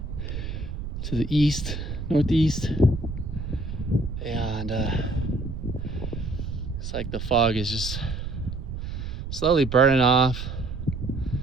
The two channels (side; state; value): right; noise; rumble, 6 dB below the sound